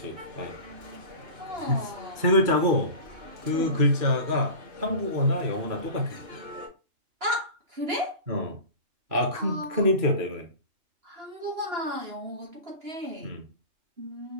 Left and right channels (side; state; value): left; late; 2.9 ms